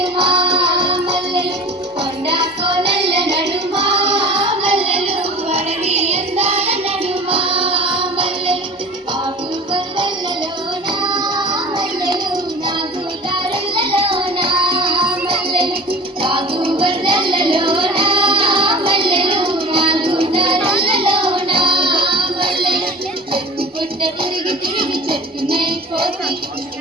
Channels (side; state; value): both; normal; correlation 0.40